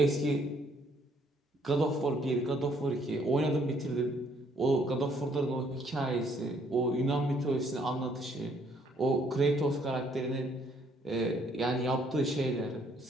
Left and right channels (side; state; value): both; normal; correlation 0.66